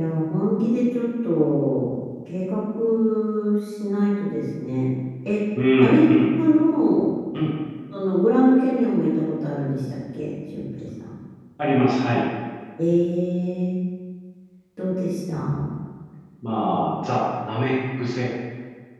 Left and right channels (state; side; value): identical; both; correlation 1.00